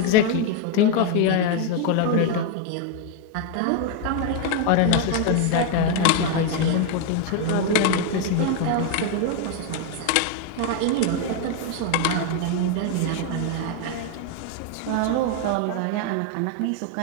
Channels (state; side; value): different; both; correlation 0.01